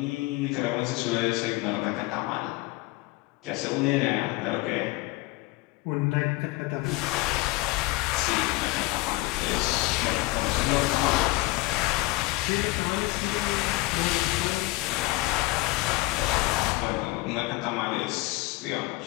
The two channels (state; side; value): quieter; right; 21.1 dB